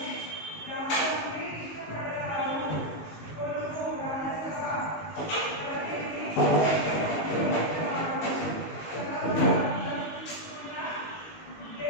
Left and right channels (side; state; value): right; late; 19 ms